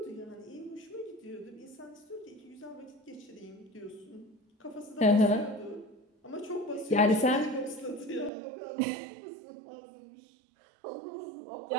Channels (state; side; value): drops out; left; at 8.3 s